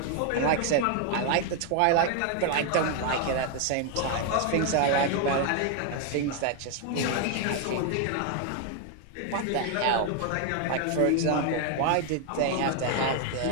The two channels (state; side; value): different; both; correlation 0.01